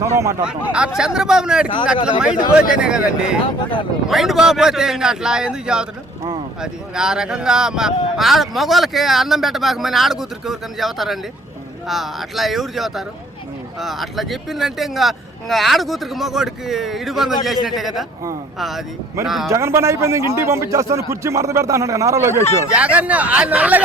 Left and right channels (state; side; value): normal; both; correlation 0.56